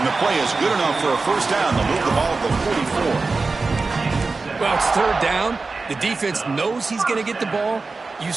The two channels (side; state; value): left; quieter; 3.9 dB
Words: the play is good enough for a first down. They'll move the ball to the 44. Well, it's third down. The defense knows he's going to get the ball. You